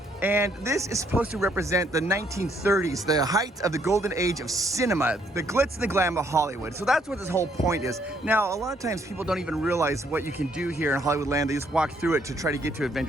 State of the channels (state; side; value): normal; both; correlation 0.69